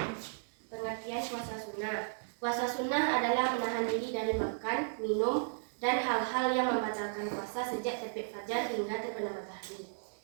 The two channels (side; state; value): left; silent; digital silence